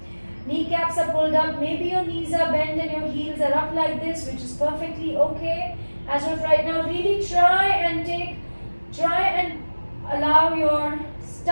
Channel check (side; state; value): both; inverted; correlation -1.00